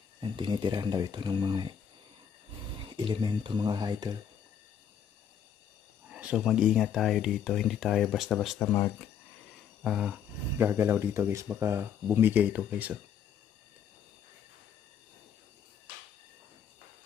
Yan, tinitirahan daw ito ng mga elemento mga idol. So mag-ingat tayo dito, hindi tayo basta-basta gagalaw dito guys, baka bumigay ito guys oh.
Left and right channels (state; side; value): quieter; right; 8.2 dB